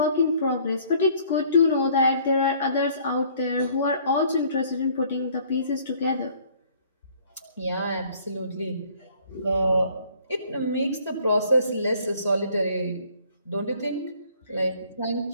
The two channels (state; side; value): inverted; both; correlation -0.58